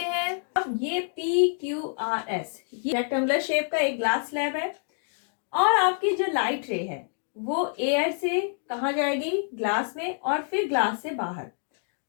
हैं। अब ये PQRS, ये रेक्टेंगुलर शेप का एक ग्लास स्लैब है और आपकी जो लाइट रे है वो एयर से कहाँ जाएगी, ग्लास में, और फिर ग्लास से बाहर।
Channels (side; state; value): right; silent; digital silence